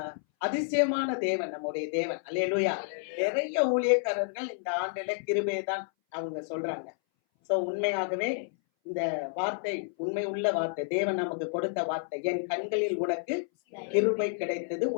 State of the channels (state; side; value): silent; right; 58 dB below the other